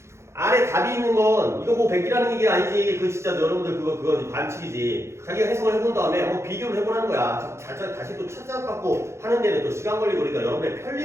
안에 답이 있는 건 이거 뭐 100이라는 얘기 아니지. 그 진짜 여러분들 그거 반칙이지. 자기가 해석을 해본 다음에 한번 비교를 해보라는 거야. 다시 또 찾아갖고 하는 데는 또 시간 걸리고 그러니까 여러분의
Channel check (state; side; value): late; left; 0.13 ms